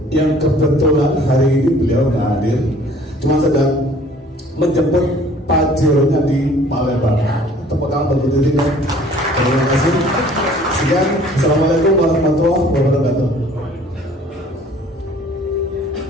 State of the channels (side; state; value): both; normal; correlation 0.53